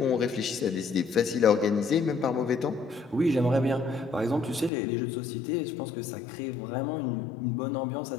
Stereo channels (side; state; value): right; drops out; at 4.7 s